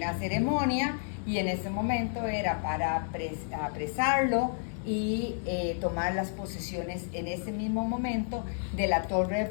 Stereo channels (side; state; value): right; silent; digital silence